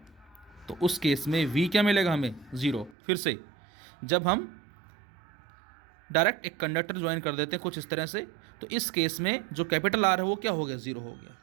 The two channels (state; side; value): drops out; left; at 3.0 s